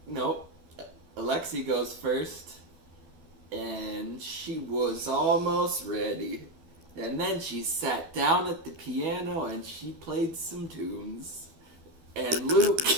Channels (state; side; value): late; left; 12 ms